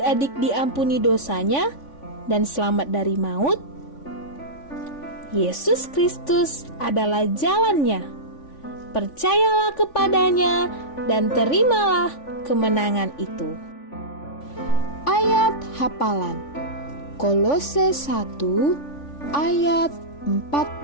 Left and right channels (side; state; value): right; late; 3.5 ms